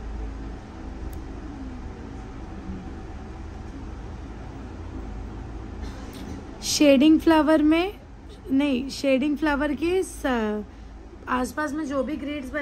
शेडिंग फ्लावर के आसपास में जो भी ग्रिड्स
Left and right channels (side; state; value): both; identical; correlation 1.00